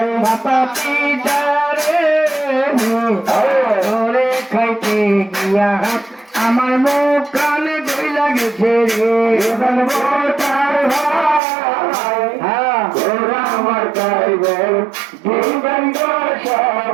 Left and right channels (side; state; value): left; drops out; at 11.4 s